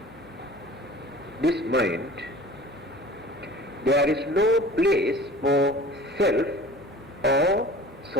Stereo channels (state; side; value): noise; left; hum, 29 dB below the sound